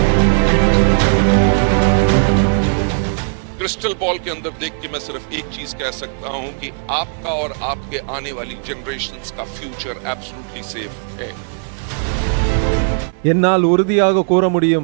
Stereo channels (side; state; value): left; silent; digital silence